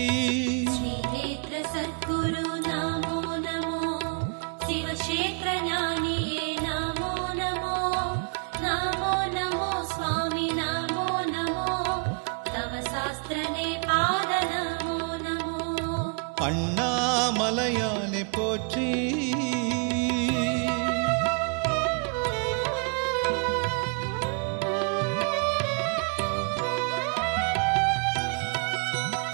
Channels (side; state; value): left; quieter; 37.2 dB